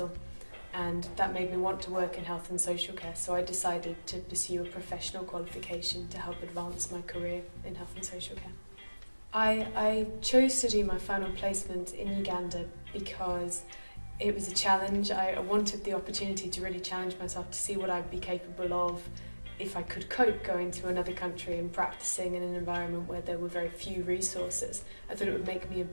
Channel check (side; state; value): both; inverted; correlation -1.00